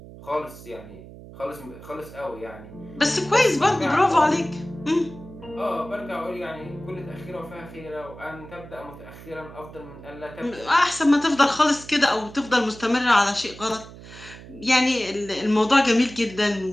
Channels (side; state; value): right; noise; hum, 17 dB below the sound